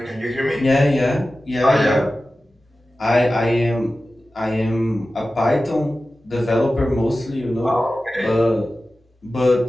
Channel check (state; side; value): normal; both; correlation 0.95